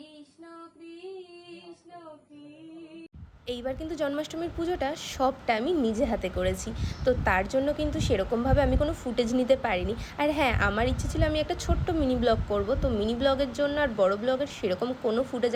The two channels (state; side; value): identical; both; correlation 1.00